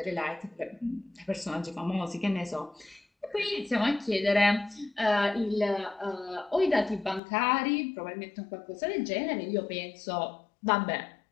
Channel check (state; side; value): drops out; right; at 7.2 s